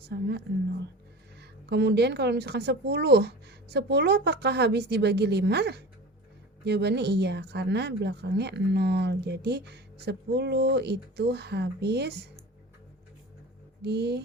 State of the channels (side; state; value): both; normal; correlation 0.35